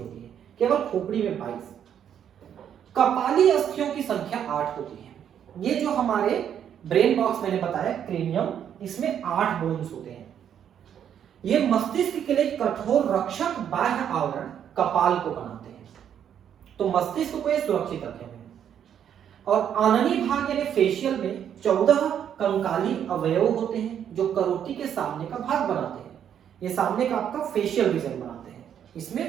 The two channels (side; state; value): left; quieter; 9.1 dB